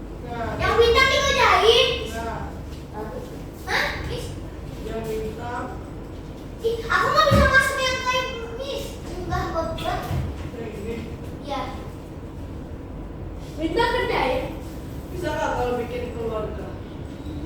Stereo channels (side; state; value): both; identical; correlation 1.00